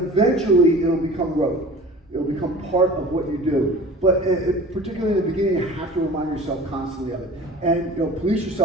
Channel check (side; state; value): both; normal; correlation 0.41